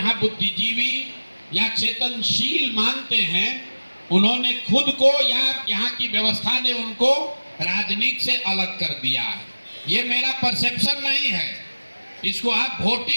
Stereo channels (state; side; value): inverted; both; correlation -1.00